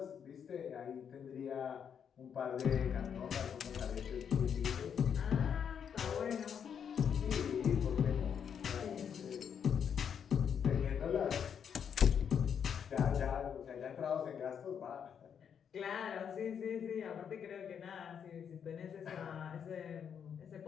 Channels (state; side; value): quieter; right; 7.7 dB